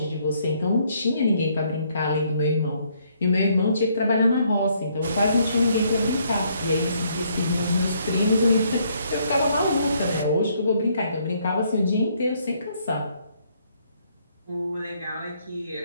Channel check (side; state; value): both; inverted; correlation -0.69